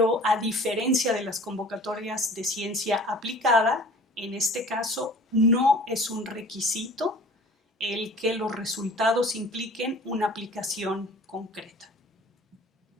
a diferencia de las convocatorias de ciencia aplicada, en este caso no es un requisito el que los resultados impliquen una aplicación concreta.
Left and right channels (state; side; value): normal; both; correlation 0.46